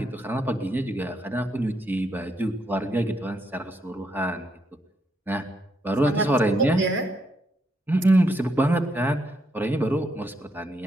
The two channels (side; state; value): both; normal; correlation 0.77